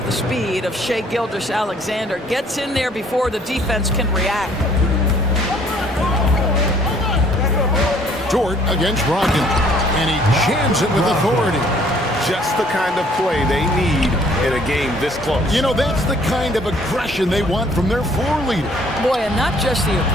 the speed of Shai Gilgeous-Alexander. Gets in there before the defense can react. Dort against Brogdon, and he jams it with authority. Just the kind of play they need in a game this close. You know, that's the kind of aggression they want from their floor leader. Boy, and not just the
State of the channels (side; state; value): both; normal; correlation 0.60